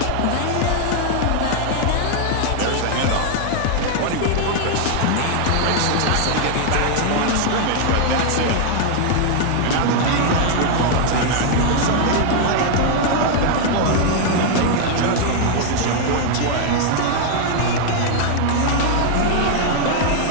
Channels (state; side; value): different; both; correlation 0.00